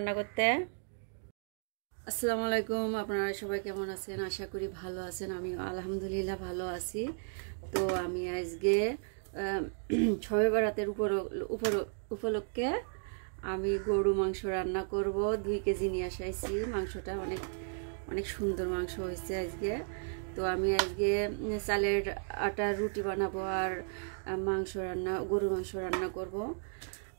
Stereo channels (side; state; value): left; silent; digital silence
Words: করতে। আসসালামু আলাইকুম, আপনারা সবাই কেমন আছেন? আশা করি ভালো আছেন। আমি আলহামদুলিল্লাহ ভালো আছি। তো আমি আজকে শবে বরাতের উপলক্ষে আমি গরু মাংস রান্না করব। 2 কেজি নিয়ে আসাইছি। মাংসটা অনেক সুন্দর মাংস হয়েছে আজকে। তো আমি আজকে চালের আটার রুটি বানাবো আর গরু মাংস রান্না করব